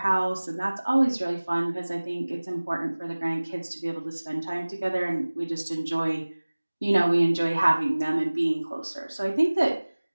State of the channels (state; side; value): inverted; both; correlation -1.00